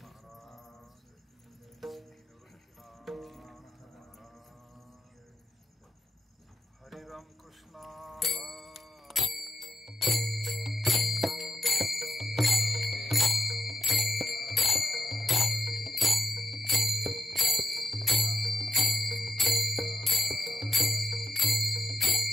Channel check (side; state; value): both; normal; correlation 0.86